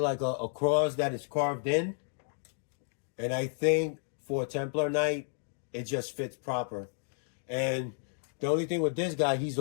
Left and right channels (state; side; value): silent; right; digital silence